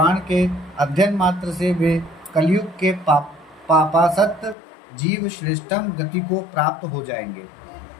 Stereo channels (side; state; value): right; drops out; at 4.5 s